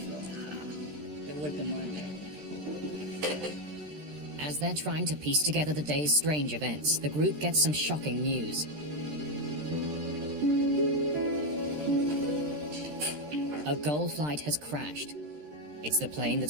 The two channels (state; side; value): late; left; 13 ms